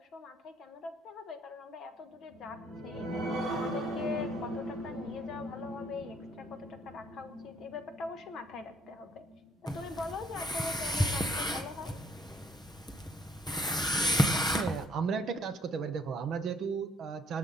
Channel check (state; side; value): normal; both; correlation 0.65